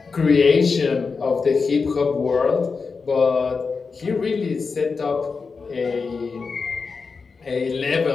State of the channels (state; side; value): quieter; right; 4.8 dB